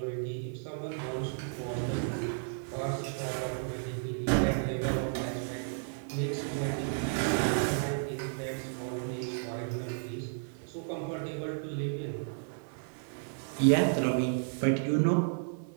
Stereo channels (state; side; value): silent; left; digital silence